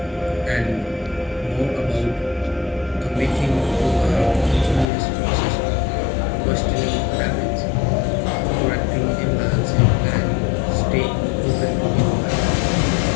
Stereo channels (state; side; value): drops out; right; at 4.9 s